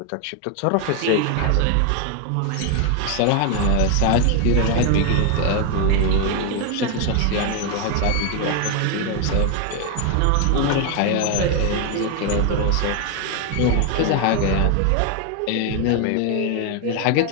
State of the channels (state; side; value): different; both; correlation 0.01